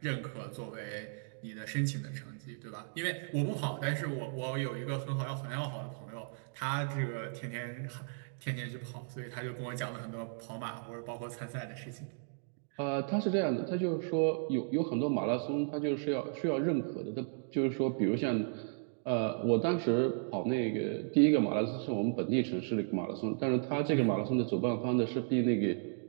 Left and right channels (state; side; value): silent; left; digital silence